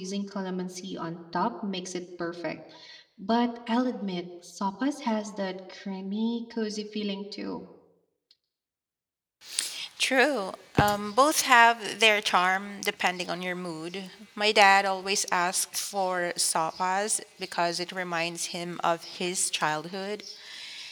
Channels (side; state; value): both; identical; correlation 1.00